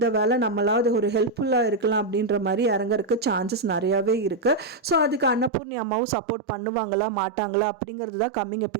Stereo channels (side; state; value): left; drops out; at 5.5 s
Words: வேலை நம்மளாவது ஒரு ஹெல்ப்ஃபுல்லாக இருக்கலாம் அப்படின்ற மாதிரி இறங்கறதுக்கு சான்சஸ் நிறையவே இருக்கு. ஸோ அதுக்கு அன்னபூர்ணி அம்மாவும் சப்போர்ட் பண்ணுவாங்களா மாட்டாங்களா அப்படிங்கிறது தான் கம்மிங்